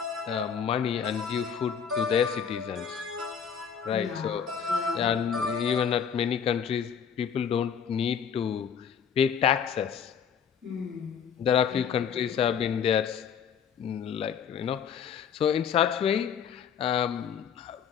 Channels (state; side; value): quieter; right; 7.5 dB